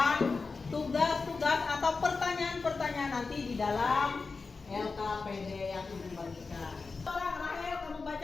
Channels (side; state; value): right; quieter; 4.3 dB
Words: tugas-tugas atau pertanyaan-pertanyaan nanti di dalam LKPD yang Ibu bagikan. Rahel, kamu